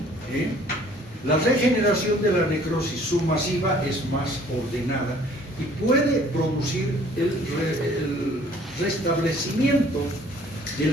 La regeneración de la necrosis submasiva es más ordenada y puede producir el restablecimiento de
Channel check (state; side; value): normal; both; correlation 0.56